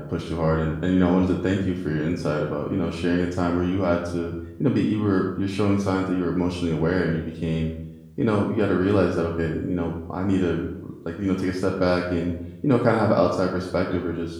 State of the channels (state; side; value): identical; both; correlation 1.00